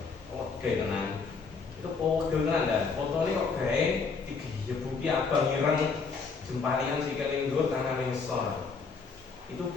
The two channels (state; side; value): quieter; right; 4.9 dB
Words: Oke, tenang. Itu pegel tenan dah. Fotonya kok gawe digebuki abang ireng jempalian sikile ndur tangan ngisor. Itu